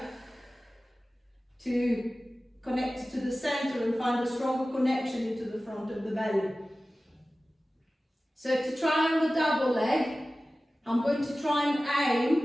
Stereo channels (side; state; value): both; normal; correlation 0.96